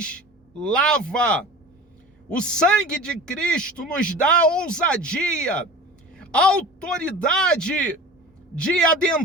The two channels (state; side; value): normal; both; correlation 0.37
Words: lava. O sangue de Cristo nos dá ousadia, autoridade de